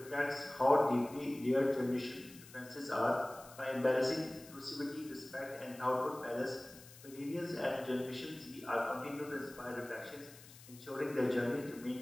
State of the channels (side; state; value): left; noise; hiss, 19 dB below the sound